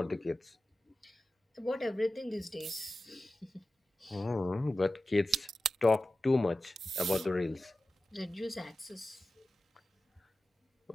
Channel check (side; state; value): both; normal; correlation 0.93